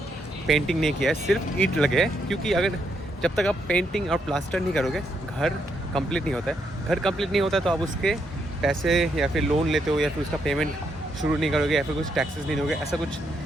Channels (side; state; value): both; normal; correlation 0.77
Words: पेंटिंग नहीं किया है, सिर्फ ईंट लगे हैं। क्योंकि अगर जब तक आप पेंटिंग और प्लास्टर नहीं करोगे घर कंप्लीट नहीं होता है। घर कंप्लीट नहीं होता तो आप उसके पैसे या फिर लोन लेते हो या फिर उसका पेमेंट शुरू नहीं करोगे या फिर कुछ टैक्सेस नहीं दोगे, ऐसा कुछ